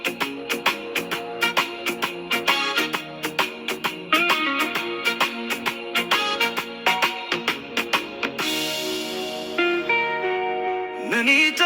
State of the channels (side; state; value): both; identical; correlation 1.00